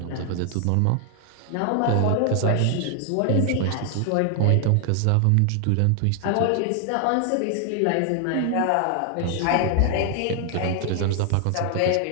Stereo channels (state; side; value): different; both; correlation 0.00